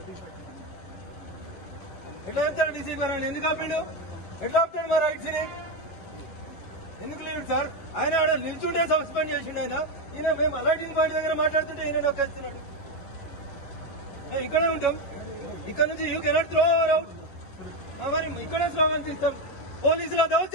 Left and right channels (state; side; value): late; right; 11 ms